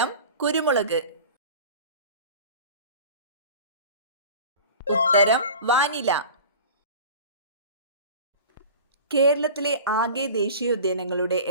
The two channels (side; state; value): both; inverted; correlation -0.38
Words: കുരുമുളക്. ഉത്തരം വാനില. കേരളത്തിലെ ആകെ ദേശീയോദ്യാനങ്ങളുടെ